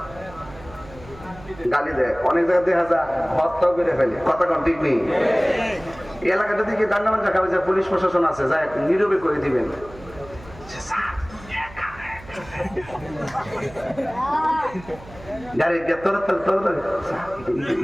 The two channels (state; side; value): noise; right; hum, 19 dB below the sound